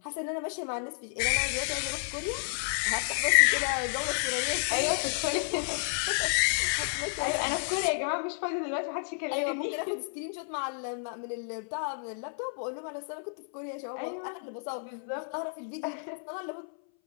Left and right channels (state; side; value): silent; right; 57 dB below the other